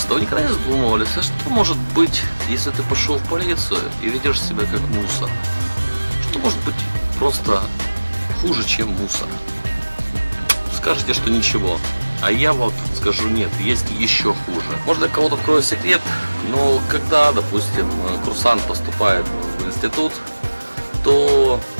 вы никогда не задумывались, а что может быть, если ты пошел в полицию и ведешь себя как мусор? Что может быть просто хуже, чем мусор? Скажете, что ничего. А я вот скажу, нет, есть еще хуже. Может, для кого-то открою секрет, но когда, допустим, курсант поступает в институт, то,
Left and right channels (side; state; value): both; inverted; correlation -1.00